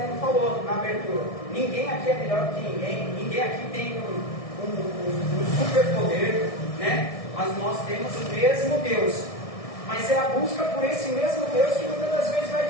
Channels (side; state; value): right; late; 1.6 ms